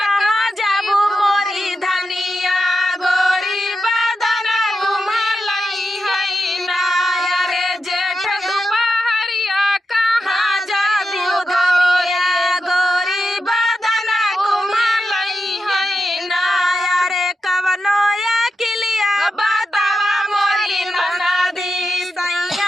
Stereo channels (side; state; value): both; normal; correlation 0.88